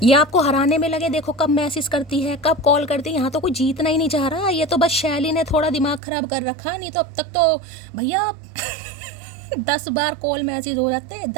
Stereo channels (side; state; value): left; drops out; at 6.0 s